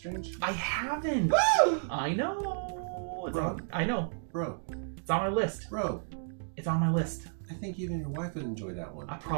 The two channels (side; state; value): left; silent; digital silence